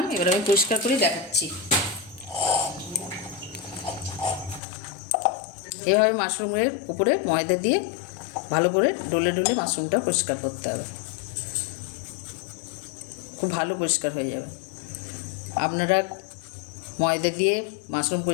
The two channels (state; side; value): drops out; right; at 4.6 s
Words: এবার আমি পরিষ্কার করে দেখাচ্ছি। এভাবে মাশরুমের উপরে ময়দা দিয়ে ভালো করে ডলে ডলে মাশরুমটা পরিষ্কার করতে হবে। খুব ভালো পরিষ্কার হয়ে যাবে। আপনারা ময়দা দিয়ে মাশরুম